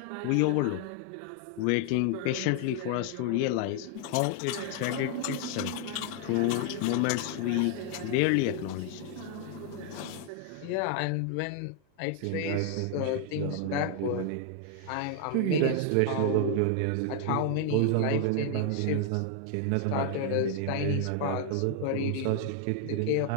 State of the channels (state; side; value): different; both; correlation 0.00